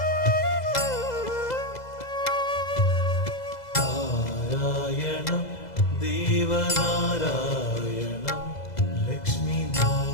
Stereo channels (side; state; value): right; late; 2.0 ms